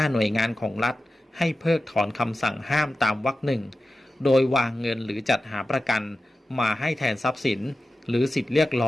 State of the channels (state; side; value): normal; both; correlation 0.93